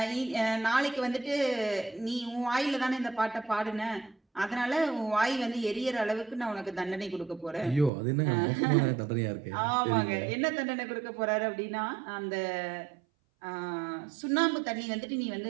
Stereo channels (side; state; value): left; drops out; at 7.9 s